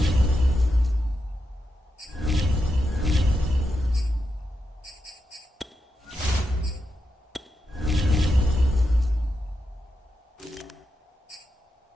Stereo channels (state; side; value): normal; both; correlation 0.86